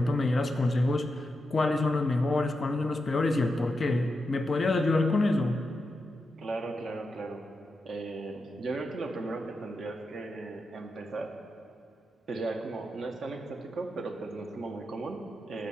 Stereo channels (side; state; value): both; normal; correlation 0.87